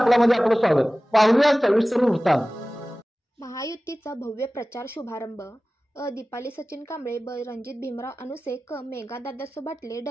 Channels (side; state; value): both; normal; correlation 0.97